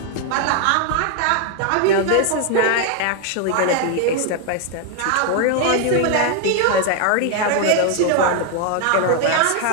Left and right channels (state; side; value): different; both; correlation 0.00